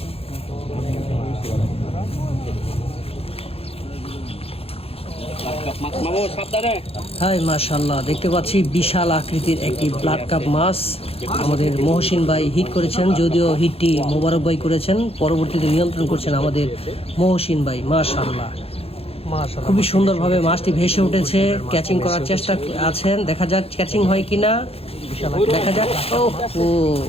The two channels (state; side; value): late; right; 0.28 ms